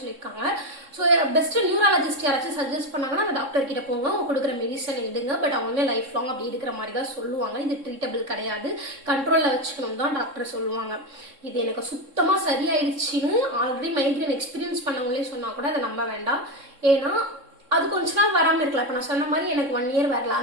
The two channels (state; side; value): late; left; 3.6 ms